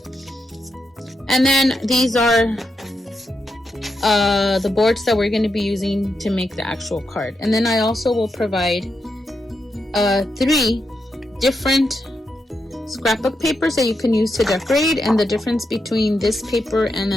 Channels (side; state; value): both; normal; correlation 0.85